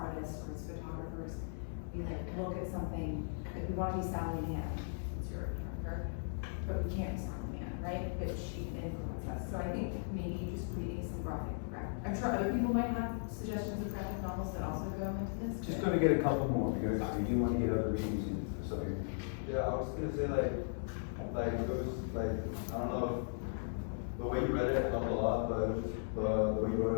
or as photographers, we look at something, we want to be Sally Mann, it's your character, but we can't be Sally Mann, right? But she can influence us. So I think maybe just reading some graphic, I'm sure other people might have suggestions of graphic novels that also go into this. Just gonna get a couple more, because we do wanna get other readings in, so. Yeah, I was gonna say it was I don't know, the way you read it helped a lot, but it was just the way you wrote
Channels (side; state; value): right; silent; digital silence